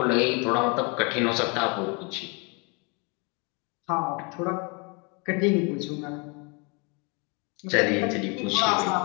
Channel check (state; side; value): quieter; right; 31.8 dB